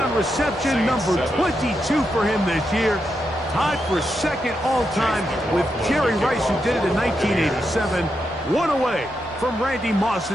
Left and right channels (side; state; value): both; normal; correlation 0.84